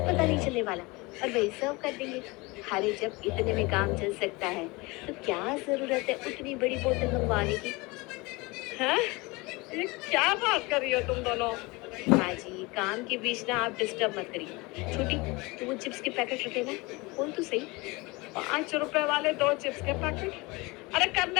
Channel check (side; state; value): right; quieter; 24.4 dB